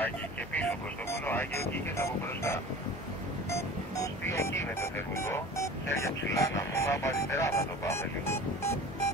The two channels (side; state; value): both; normal; correlation 0.39